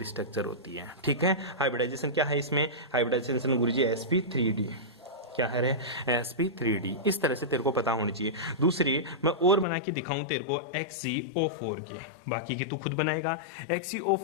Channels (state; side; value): drops out; right; at 9.7 s